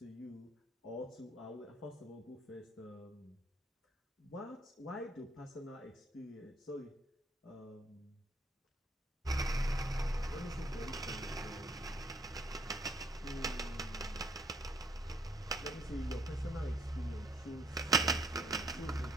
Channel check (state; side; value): normal; both; correlation 0.65